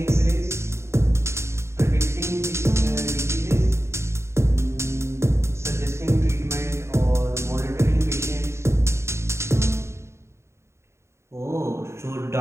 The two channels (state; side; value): late; left; 0.13 ms